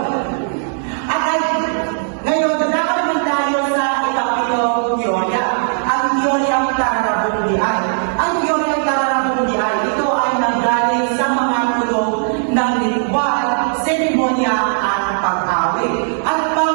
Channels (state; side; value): silent; left; digital silence